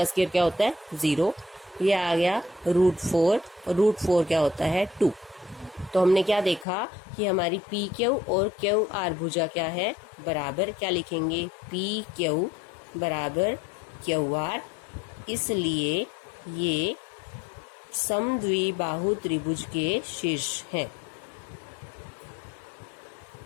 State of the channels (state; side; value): drops out; right; at 6.7 s